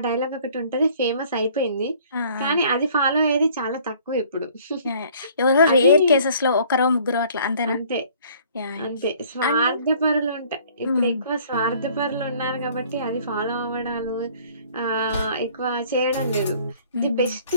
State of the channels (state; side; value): inverted; both; correlation -0.55